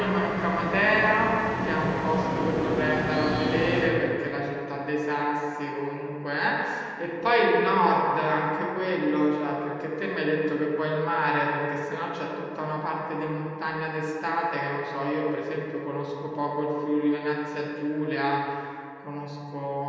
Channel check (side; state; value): both; identical; correlation 1.00